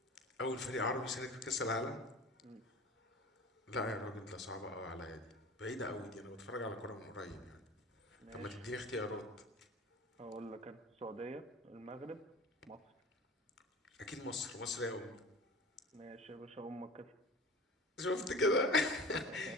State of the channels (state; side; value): normal; both; correlation 0.38